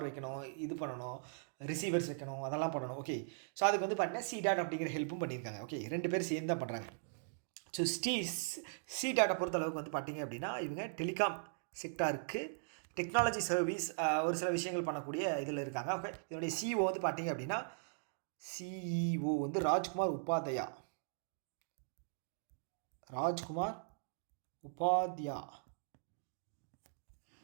வைக்கணும், இது பண்ணணும், ரிசீவர்ஸ் வைக்கணும், அதெல்லாம் பண்ணணும். ஓகே, ஸோ அதுக்கு வந்து பார்த்தீங்கன்னா சி.டாட் அப்படிங்கிற ஹெல்ப்பும் பண்ணியிருக்காங்க. ஓகே, 2 பேர் சேர்ந்து தான் பண்ணுறாங்க. ஸோ சி.டாட்டை பொறுத்தளவுக்கு வந்து பார்த்திங்க அப்படின்னா இவங்க டெலிகாம் செக்டாருக்கு டெக்னாலஜி சர்வீஸ் ஒரு சில விஷயங்கள் பண்ணக்கூடிய இதில் இருக்காங்க. ஓகே, இதனுடைய சிஇஓ வந்து பார்த்தீங்க அப்படின்னா சிஇஓ வந்து Rajkumar Upadhyay.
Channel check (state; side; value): silent; left; digital silence